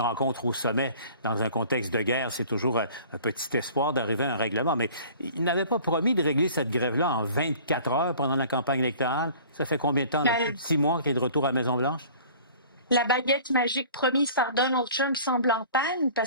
rencontre au sommet dans un contexte de guerre, c'est toujours un petit espoir d'arriver à un règlement. Mais il n'avait pas promis de régler cette grève-là en 24 heures pendant la campagne électorale. Ça fait combien de temps? Là, plus de 6 mois qu'il est de retour à la Maison-Blanche? La baguette magique promise par Donald Trump semble en panne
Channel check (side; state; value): both; inverted; correlation -0.47